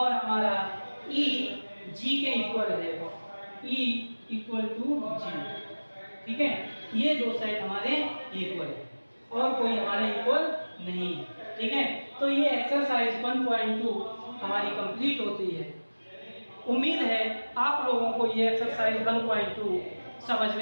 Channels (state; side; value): inverted; both; correlation -1.00